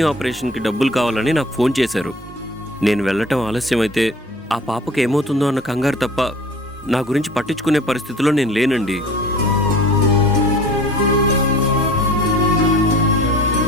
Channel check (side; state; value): both; normal; correlation 0.45